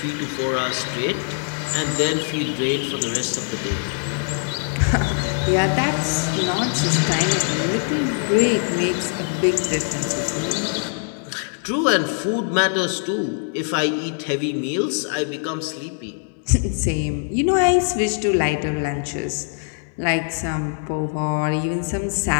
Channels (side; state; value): right; silent; 59 dB below the other